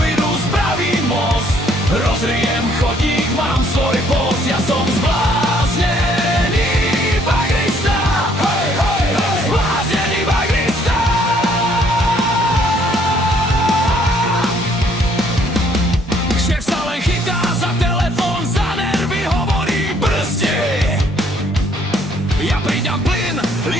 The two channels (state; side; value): normal; both; correlation 0.65